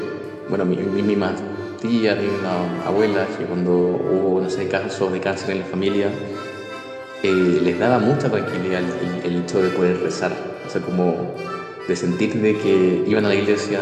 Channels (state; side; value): identical; both; correlation 1.00